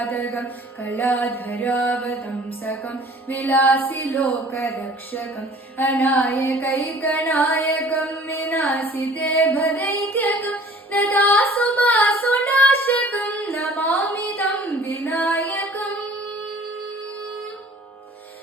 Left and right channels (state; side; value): normal; both; correlation 0.50